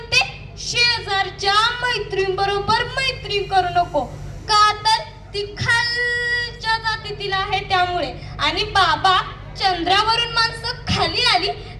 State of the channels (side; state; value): both; identical; correlation 1.00